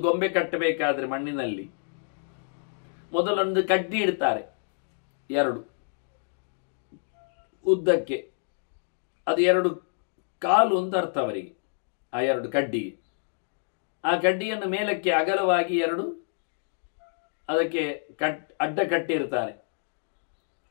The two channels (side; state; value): right; silent; digital silence